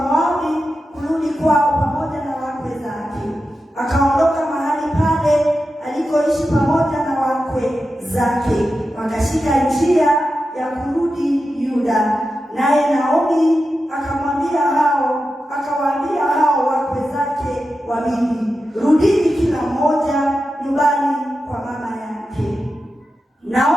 kurudi kwao pamoja na wakwe zake. Akaondoka mahali pale alikoishi pamoja na wakwe zake, wakashika njia ya kurudi Yuda. Naye Naomi akawaambia hao wakwe zake wawili, rudini kila mmoja nyumbani kwa mama yake.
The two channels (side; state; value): both; normal; correlation 0.91